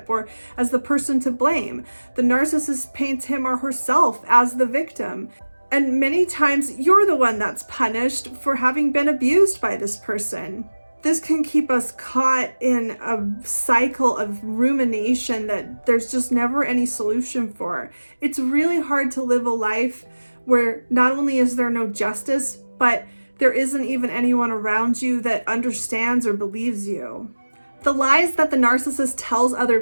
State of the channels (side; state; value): both; inverted; correlation -1.00